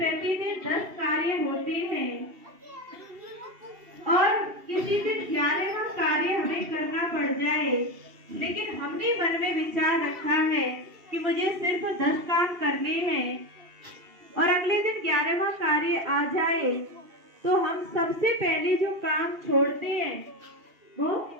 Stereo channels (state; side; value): late; left; 2.7 ms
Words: 10 कार्य होते हैं और किसी दिन 11वां कार्य हमें करना पड़ जाए, लेकिन हमने मन में विचार रखा है कि मुझे सिर्फ 10 काम करने हैं और अगले दिन 11वां कार्य आ जाए, तो हम सबसे पहले जो काम छोड़ते हैं वो